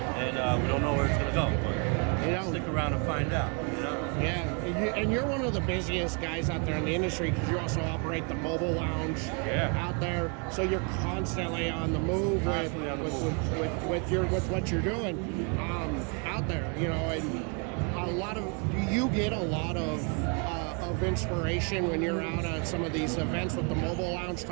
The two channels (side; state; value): left; quieter; 36.2 dB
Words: we don't know where it's gonna go. But stick around and find out. You know? Yeah, and you're one of the busiest guys out there in the industry because you also operate the mobile lounge out there. So you're constantly on the move with what you're doing out there. You know, and do you get a lot of inspiration when you're out at some of these events with the mobile lounge,